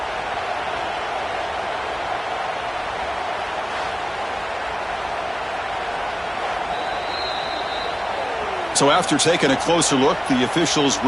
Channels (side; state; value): both; identical; correlation 1.00